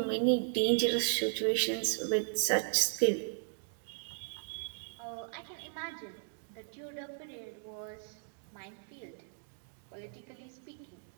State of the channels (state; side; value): silent; left; digital silence